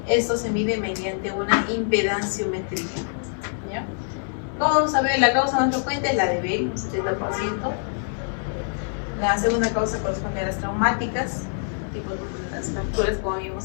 Esto se mide mediante una impedanciometría, ¿ya? ¿Cómo vamos a ver? La causa más frecuente es la de Bell, un 70%. La segunda causa corresponde a las traumáticas, tipo de las fracturas, como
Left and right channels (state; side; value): silent; right; 61 dB below the other